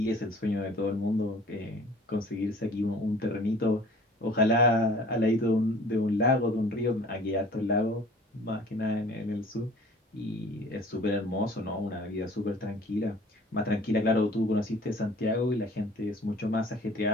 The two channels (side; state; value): both; normal; correlation 0.49